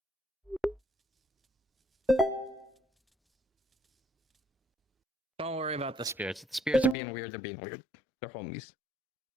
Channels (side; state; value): right; drops out; at 7.0 s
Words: Don't worry about the spirits. If the spirits are being weird, they're being weird. They're homies.